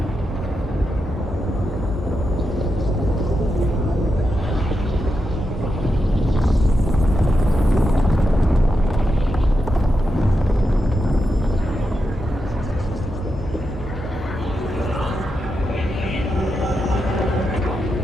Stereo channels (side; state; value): both; normal; correlation 0.87